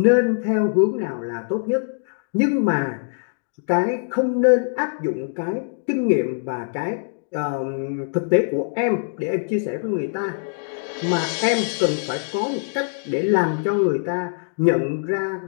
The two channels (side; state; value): right; silent; digital silence